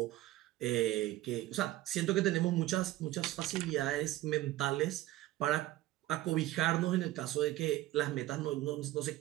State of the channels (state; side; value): quieter; left; 16.2 dB